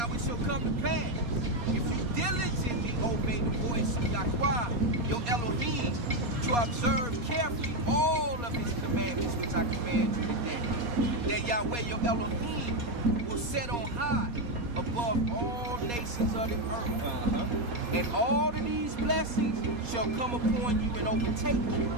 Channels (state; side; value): late; left; 4.2 ms